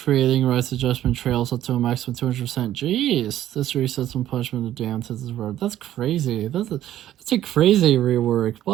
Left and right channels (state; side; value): quieter; left; 12.5 dB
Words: Rights Adjustment trails up to a maximum 200%. Jeez. This resets when punishment of the damned hits his word. That's crazy. That's a crazy rework.